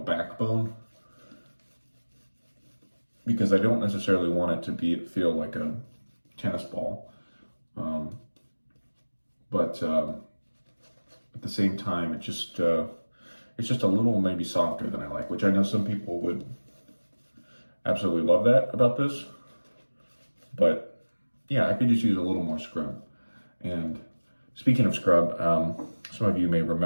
because I don't necessarily want it to feel like a tennis ball. But at the same time, it's just a little maybe softer than I like, which I know some people would absolutely love that about this. But yeah, I could just use a little more scrub. And speaking of scrub, some of you may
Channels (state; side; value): inverted; both; correlation -1.00